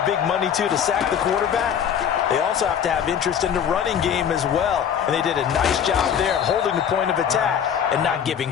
big money to sack the quarterback, they also have to have interest in the running game as well. And they did a nice job there of holding the point of attack and not giving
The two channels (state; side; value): quieter; right; 8.4 dB